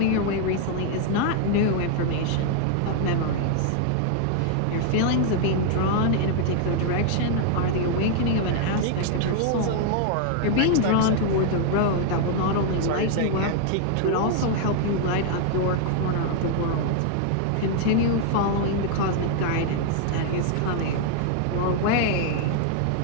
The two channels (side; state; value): both; different; correlation 0.00